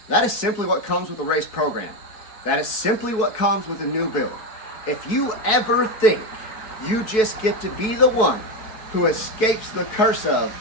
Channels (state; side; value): late; right; 4.6 ms